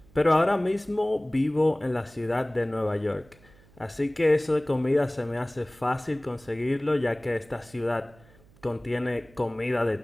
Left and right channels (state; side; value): noise; right; hum, 27 dB below the sound